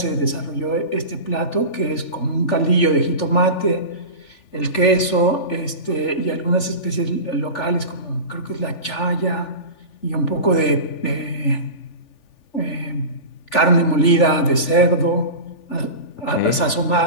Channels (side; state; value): right; late; 3.4 ms